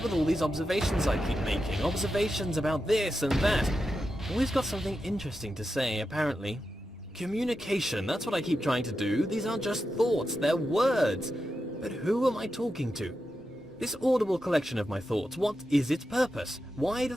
with all these observations I keep making? Observations about this and that. Always got something interesting to say, apparently. Communication, that's what I keep trying to do. These aren't just thoughts, they're words. But who am I talking to? This audible collection of my thoughts, what is its purpose? Why do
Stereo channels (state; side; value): normal; both; correlation 0.89